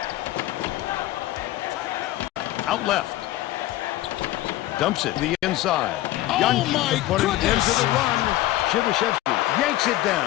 Out left. Dumps it to the inside. Oh, Youngki my putting it goodness. into the run. Shivashevsky yanks it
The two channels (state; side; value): quieter; right; 15.6 dB